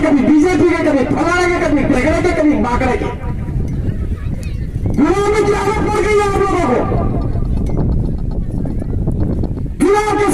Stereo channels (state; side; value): identical; both; correlation 1.00